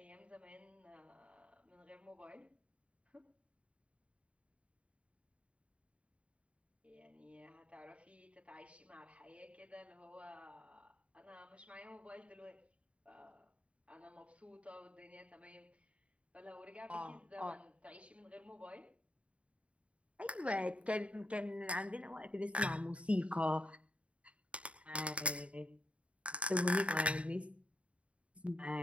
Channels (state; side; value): late; left; 0.063 ms